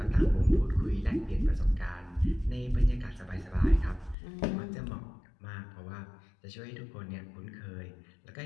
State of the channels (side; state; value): right; drops out; at 4.2 s